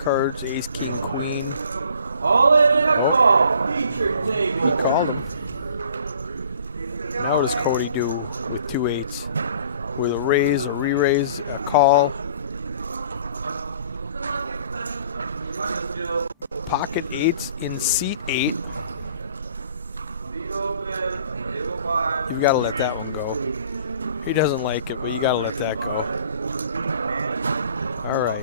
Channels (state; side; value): inverted; both; correlation -0.53